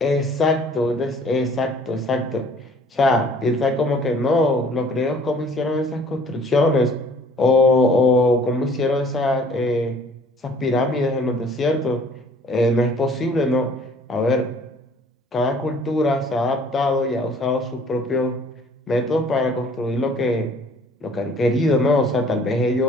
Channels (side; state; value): both; normal; correlation 0.54